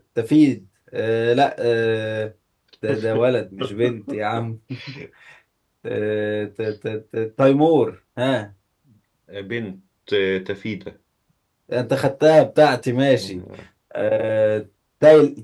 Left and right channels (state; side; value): identical; both; correlation 1.00